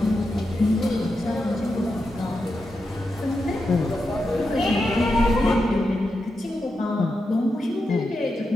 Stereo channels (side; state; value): both; normal; correlation 0.88